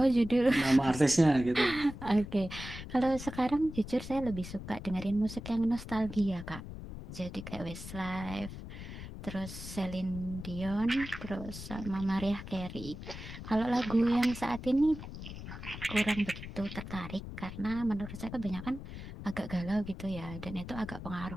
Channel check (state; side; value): noise; left; rumble, 10 dB below the sound